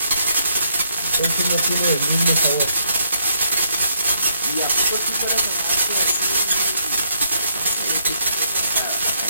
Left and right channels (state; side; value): inverted; both; correlation -0.72